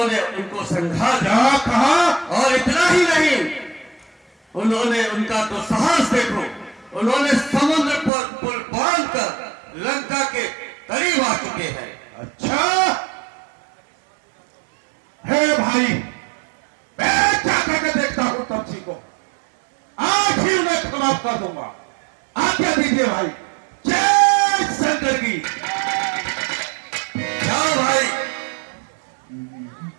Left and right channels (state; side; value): drops out; left; at 8.1 s